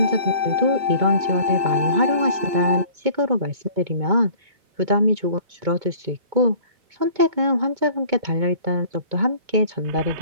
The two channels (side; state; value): left; late; 2.2 ms